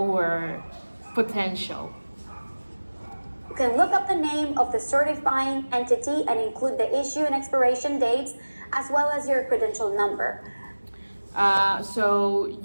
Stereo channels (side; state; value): both; inverted; correlation -1.00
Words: potential. You can look up the name of the certifying entity and include the issue and expiration dates, as well as your credential number. So